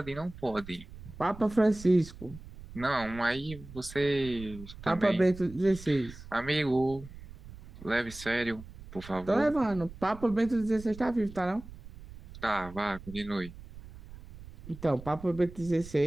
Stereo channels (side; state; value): right; noise; rumble, 16 dB below the sound